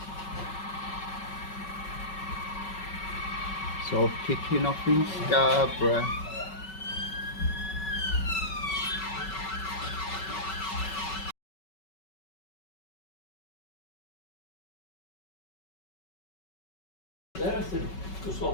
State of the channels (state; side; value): late; right; 5.3 ms